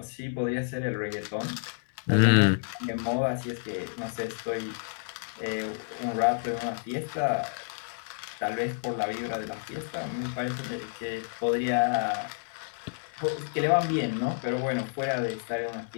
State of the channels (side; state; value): right; silent; digital silence